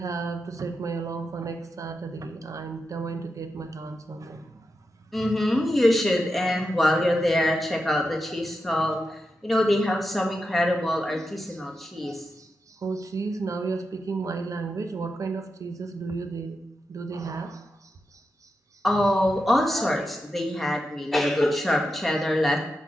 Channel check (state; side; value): normal; both; correlation 0.88